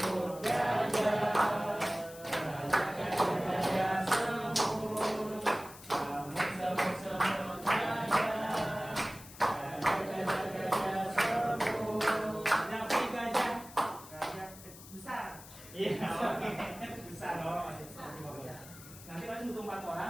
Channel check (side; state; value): left; noise; hiss, 17 dB below the sound